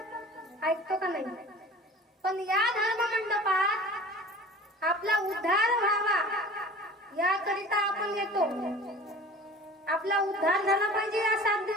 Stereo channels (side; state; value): both; normal; correlation 0.41